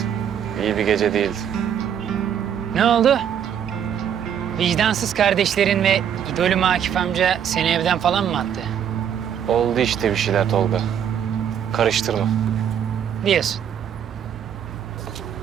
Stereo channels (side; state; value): left; quieter; 8.9 dB